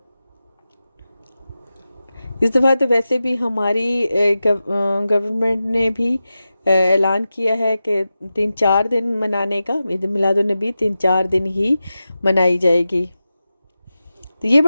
इस दफ़ा तो वैसे भी हमारी गवर्नमेंट ने भी ऐलान किया है कि 3-4 दिन मनाने का, ईद मिलादुन्नबी 3-4 दिन ही मनाई जाएगी। तो ये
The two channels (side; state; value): both; inverted; correlation -0.93